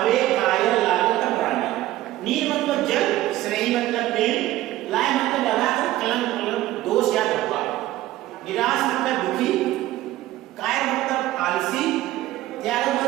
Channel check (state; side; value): quieter; left; 15.5 dB